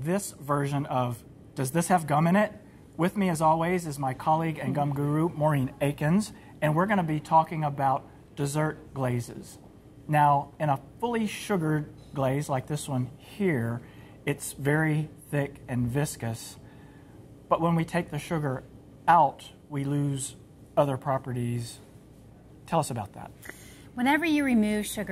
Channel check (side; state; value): both; identical; correlation 1.00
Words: version of Does This Have Gum in It? With me, as always, is my colleague and gum guru, Maureen Akins, and we're going to be talking about dessert glazes. Now, in a fully sugared glaze like this one here, it's very thick and viscous, but when we take the sugar out, we lose other properties. Tell us about that. Whenever you remove